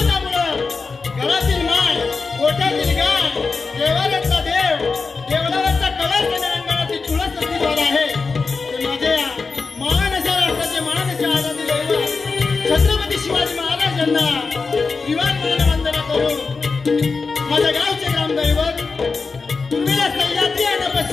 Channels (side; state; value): right; quieter; 4.5 dB